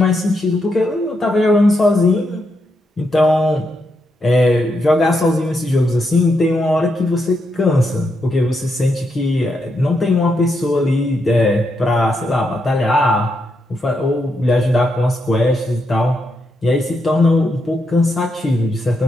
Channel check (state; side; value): normal; both; correlation 0.82